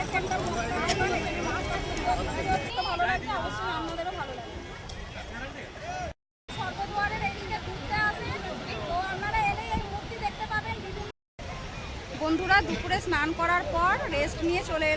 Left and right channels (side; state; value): both; identical; correlation 1.00